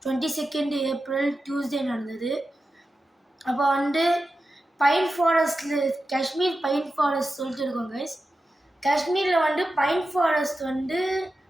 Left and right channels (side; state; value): both; normal; correlation 0.92